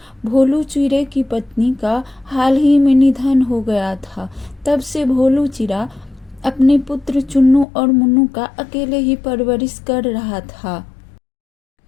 भोलू चिड़े की पत्नी का हाल ही में निधन हो गया था। तब से भोलू चिड़ा अपने पुत्र चुन्नू और मुन्नू का अकेले ही परवरिश कर रहा था।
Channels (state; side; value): drops out; right; at 7.7 s